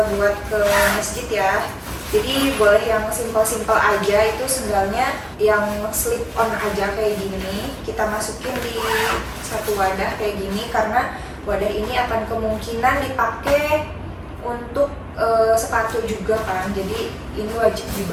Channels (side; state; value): both; identical; correlation 1.00